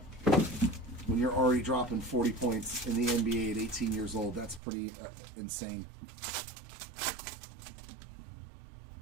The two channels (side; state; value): left; drops out; at 4.6 s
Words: When you're already dropping 40 points in the NBA at 18 years old, that's pretty insane.